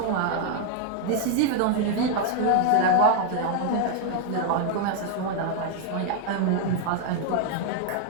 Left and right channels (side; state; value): both; different; correlation 0.00